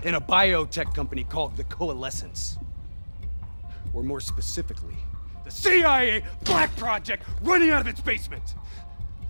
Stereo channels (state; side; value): inverted; both; correlation -1.00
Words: in a biotech company called the Coalescence. Or more specifically, the CIA Black Project running out of its basement.